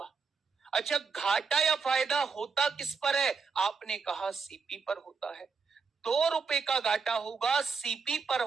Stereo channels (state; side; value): quieter; left; 5.2 dB